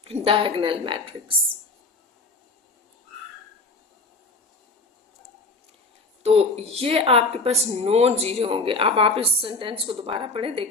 डायगोनल मैट्रिक्स। तो ये आपके पास नॉन जीरो होंगे। अब आप इस सेंटेंस को दोबारा पढ़ें,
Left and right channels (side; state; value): right; quieter; 3.4 dB